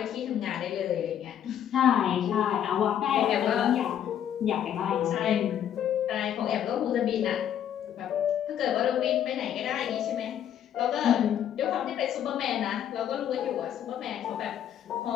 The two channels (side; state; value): right; quieter; 10.0 dB